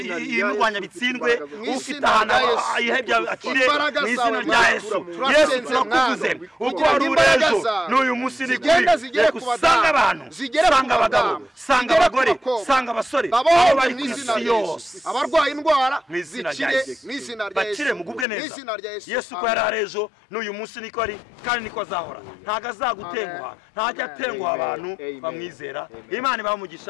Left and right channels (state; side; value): drops out; right; at 18.2 s